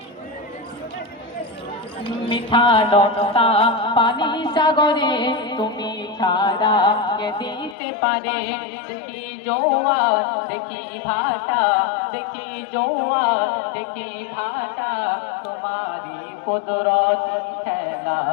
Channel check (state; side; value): drops out; right; at 7.8 s